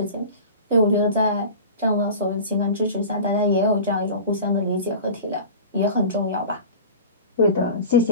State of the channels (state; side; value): inverted; both; correlation -0.35